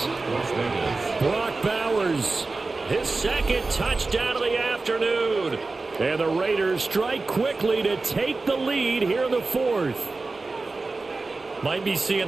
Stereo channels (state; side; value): quieter; left; 3.6 dB